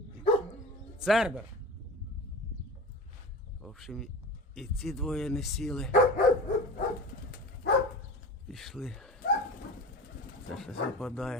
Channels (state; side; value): normal; both; correlation 0.33